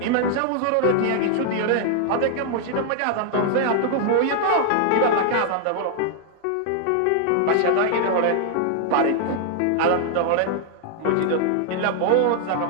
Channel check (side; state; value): both; different; correlation 0.00